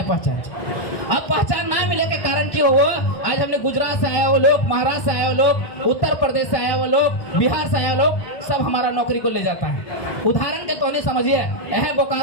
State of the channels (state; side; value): late; right; 1.1 ms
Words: पहचान चाहिए। अब पहचान ना मिले के कारण की हो, आज हमने गुजरात से आए हो लोग, महाराष्ट्र से आए हो लोग, उत्तर प्रदेश से आए हो लोग, बिहार से आए हो लोग, सब हमारा नौकरी को ले जाता है। उदाहरण के तो नहीं समझिए, यह